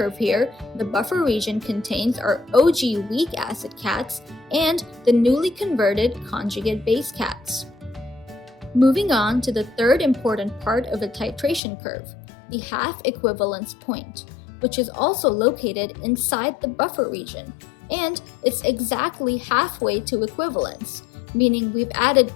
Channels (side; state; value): right; drops out; at 11.6 s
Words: here, the buffer region contains our OG weak acid cats and the newly converted conjugate base cats. Moving on to the third important part of a titration curve, the half equivalence point, which is also located inside the buffer region, and it's exactly halfway to equivalence, meaning we've added